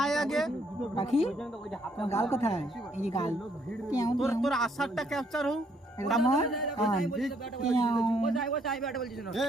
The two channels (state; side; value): normal; both; correlation 0.69